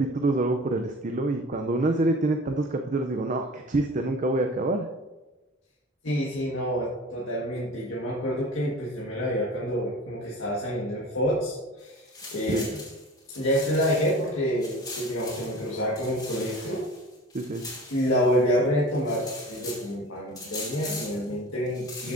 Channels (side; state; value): both; normal; correlation 0.40